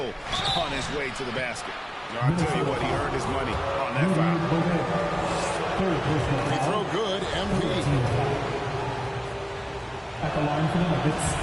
on his way to the basket. Now, I'll tell you what, he earned his money on that foul. Free throw good, MP. At the line for the Nuggets.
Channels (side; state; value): both; identical; correlation 1.00